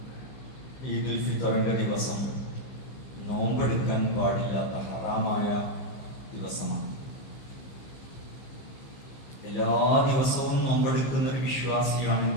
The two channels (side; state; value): right; late; 15 ms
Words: ഈദുൽ ഫിത്തറിൻ്റെ ദിവസം നോമ്പെടുക്കാൻ പാടില്ലാത്ത ഹറാമായ ദിവസമാണ്. എല്ലാ ദിവസവും നോമ്പെടുക്കുന്ന ഒരു